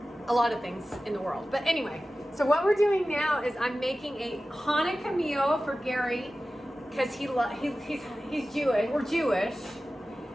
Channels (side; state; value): both; normal; correlation 0.95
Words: a lot of things in the world. But anyway, so what we're doing now is I'm making a Hanukkah meal for Gary because he's Jewish. We're Jewish,